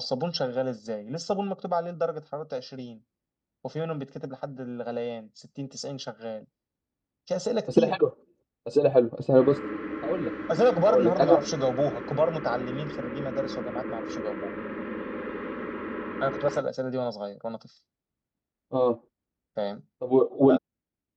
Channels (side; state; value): both; identical; correlation 1.00